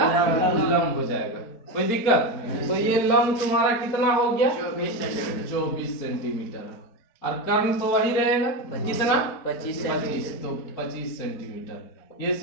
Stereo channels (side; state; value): right; late; 4.4 ms